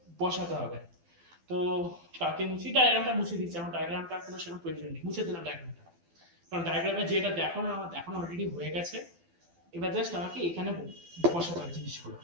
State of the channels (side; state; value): left; late; 12 ms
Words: বসাতে হবে। তো কাকে মুছি? ডায়াগ্রামটা মুছে দিচ্ছি, আমার ডায়াগ্রামটা কোনো সেরকম প্রয়োজন নেই, মুছে দিলাম ডায়াগ্রামটা, কারণ ডায়াগ্রামে যেটা দেখানো আমার দেখানো অলরেডি হয়ে গেছে। এবার জাস্ট আমাকে এখানে বসাতে হবে জিনিসগুলো।